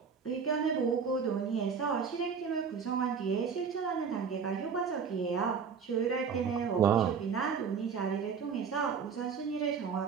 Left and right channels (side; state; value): left; quieter; 6.2 dB